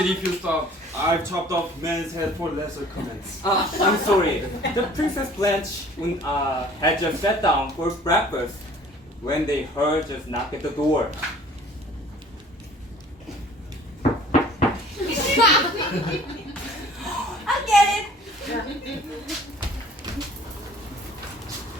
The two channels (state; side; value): normal; both; correlation 0.51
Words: if you stopped. I've chopped off men's head for lesser comments. I'm sorry. The Princess Blanche had just sat down for breakfast when they heard just knock at the door. I'll get it.